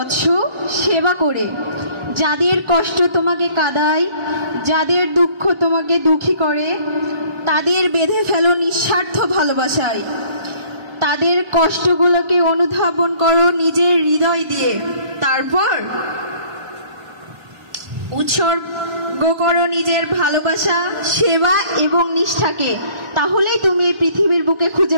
সেবা করে। যাদের কষ্ট তোমাকে কাঁদায়, যাদের দুঃখ তোমাকে দুঃখী করে, তাদের বেঁধে ফেলো নিঃস্বার্থ ভালোবাসায়। তাদের কষ্টগুলোকে অনুধাবন করো নিজের হৃদয় দিয়ে। তারপর উৎসর্গ করো নিজের ভালোবাসা, সেবা এবং নিষ্ঠাকে। তাহলেই তুমি এই পৃথিবীর বুকে খুঁজে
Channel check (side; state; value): left; late; 1.4 ms